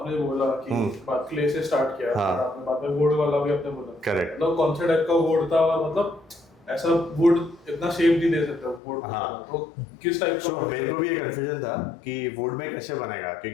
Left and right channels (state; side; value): drops out; right; at 8.8 s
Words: बोला कि बात क्ले से स्टार्ट किया, हाँ। और आपने बाद में वुड वाला भी आपने बोला, करेक्ट। मतलब कौन से टाइप का वुड था और मतलब ऐसा वुड इतना शेप नहीं दे सकता वुड। हाँ। तो किस टाइप सो मेरे को भी ये कंफ्यूजन था कि वुड में कैसे बनेगा,